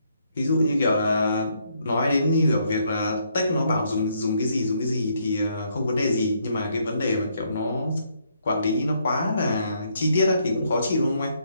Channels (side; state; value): both; inverted; correlation -0.72